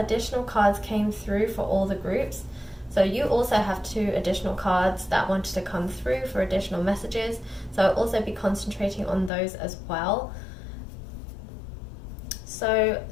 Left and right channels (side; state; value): right; drops out; at 9.3 s